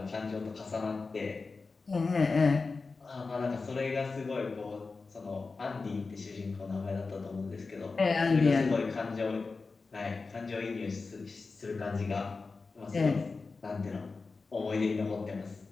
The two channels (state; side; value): quieter; right; 4.2 dB